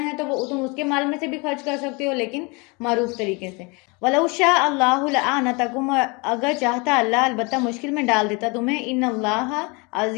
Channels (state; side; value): quieter; right; 28.8 dB